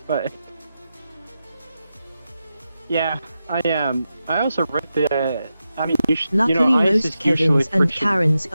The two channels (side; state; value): both; inverted; correlation -0.89